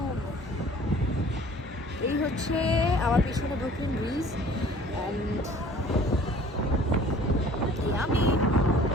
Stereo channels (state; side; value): normal; both; correlation 0.50